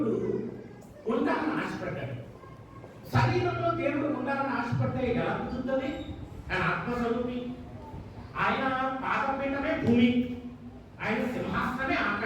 ఉండాలని ఆశపడ్డాడు. శరీరంలో దేవుడు ఉండాలని ఆశపడితే ఎలా కుదురుతుంది? ఆయన ఆత్మస్వరూపి, ఆయన పాదపీఠమే భూమి, ఆయన సింహాసనమే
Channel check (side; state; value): both; identical; correlation 1.00